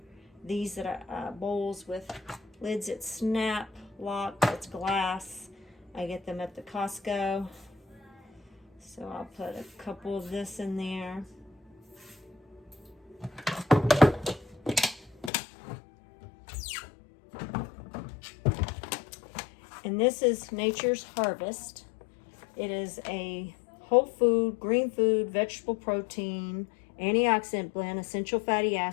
these that are bowls with lids that snap, lock, it's glass. I get them at the Costco. So I'll put a couple of this in there. And this is Nature's Harvest. It is a whole food, green food, vegetable protein, antioxidant blend, essential fatty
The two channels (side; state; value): right; drops out; at 15.3 s